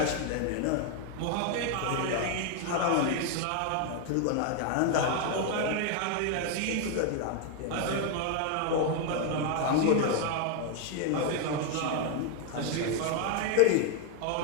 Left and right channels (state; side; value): different; both; correlation 0.01